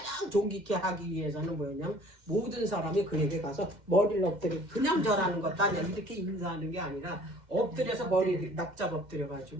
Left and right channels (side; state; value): left; late; 2.1 ms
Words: 존귀케 하기 위해서는 뭐였냐면 모든 사람이 그에게 가서 머리를 엎드려 그냥 절하는 것도 아니야. 이렇게 인사하는 게 아니라 엎드려서 머리 납작 엎드려